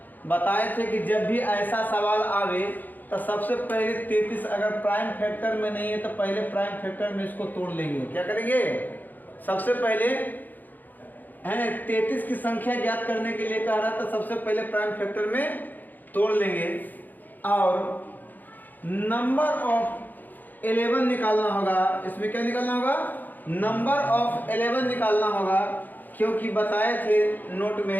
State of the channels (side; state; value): right; late; 0.085 ms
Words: बताए थे कि जब भी ऐसा सवाल आवे तो सबसे पहले 33 अगर प्राइम फैक्टर में नहीं है तो पहले प्राइम फैक्टर में इसको तोड़ लेंगे। क्या करेंगे? सबसे पहले है 33 की संख्या ज्ञात करने के लिए कह रहा था, सबसे पहले प्राइम फैक्टर में तोड़ लेंगे और नंबर ऑफ 11 निकालना होगा। इसमें क्या निकालना होगा? नंबर ऑफ 11 निकालना होगा, क्योंकि बताए थे नोट